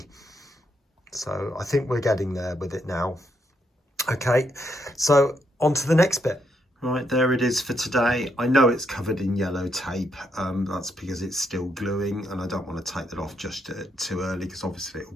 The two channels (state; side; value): normal; both; correlation 0.77